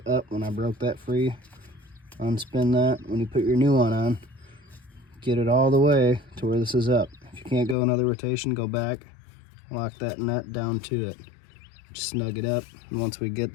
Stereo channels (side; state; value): right; drops out; at 7.8 s